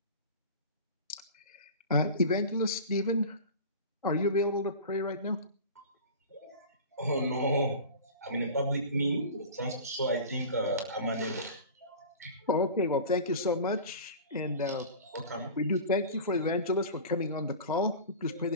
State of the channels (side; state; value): both; inverted; correlation -0.35